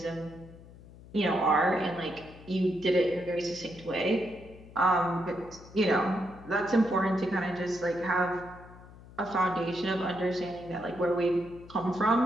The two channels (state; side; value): noise; left; hum, 19 dB below the sound